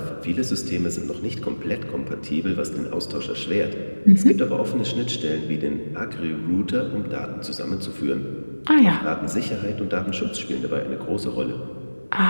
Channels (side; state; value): both; inverted; correlation -1.00